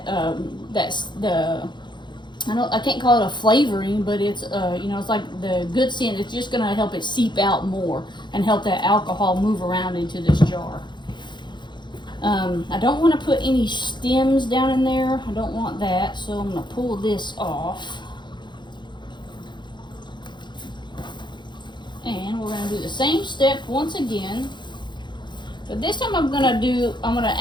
I can't call it a flavoring, but it's, it's like the good scent. It's just going to help it seep out more and help that alcohol move around into this jar. I don't want to put any stems down in there. I don't want that, so I'm going to pull this off. And we're going to do the same step once again. But this time I'm going to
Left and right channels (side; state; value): right; late; 0.22 ms